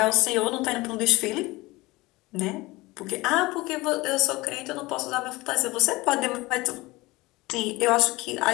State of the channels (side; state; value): right; quieter; 21.3 dB